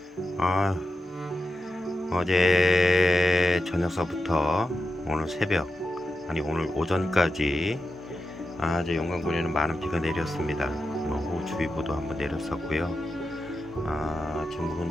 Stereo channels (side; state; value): both; normal; correlation 0.90